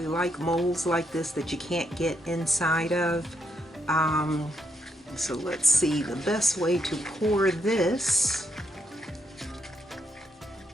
like molds like this that you can't get inside of. So let's see, the best way to pour this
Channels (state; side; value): normal; both; correlation 0.79